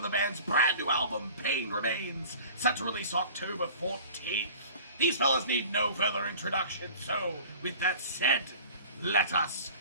the band's brand new album, Pain Remains, set to release October 14th. These fellas need no further introduction, so with that said, let us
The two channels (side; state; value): both; inverted; correlation -0.43